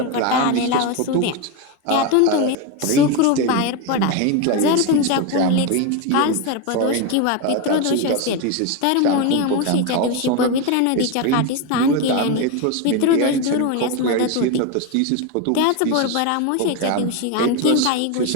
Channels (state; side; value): different; both; correlation 0.03